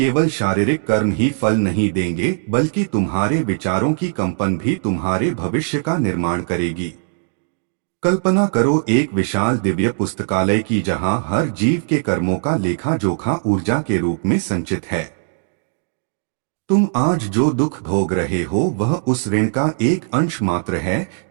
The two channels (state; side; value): silent; left; digital silence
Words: शारीरिक कर्म ही फल नहीं देंगे, बल्कि तुम्हारे विचारों की कंपन भी तुम्हारे भविष्य का निर्माण करेगी। कल्पना करो एक विशाल दिव्य पुस्तकालय की जहाँ हर जीव के कर्मों का लेखा जोखा ऊर्जा के रूप में संचित है। तुम आज जो दुख भोग रहे हो वह उस ऋण का एक अंश मात्र है